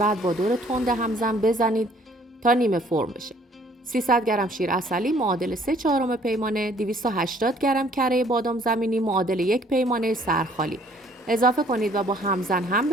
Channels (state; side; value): normal; both; correlation 0.59